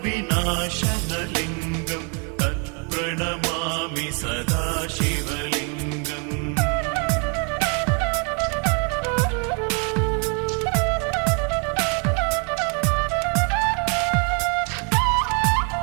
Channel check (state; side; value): quieter; left; 37.1 dB